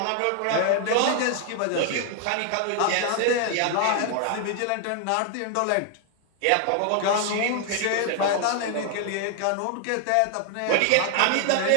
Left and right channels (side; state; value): both; different; correlation 0.00